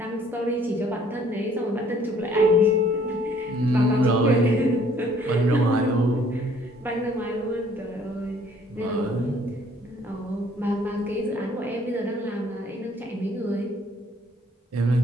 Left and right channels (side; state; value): both; normal; correlation 0.59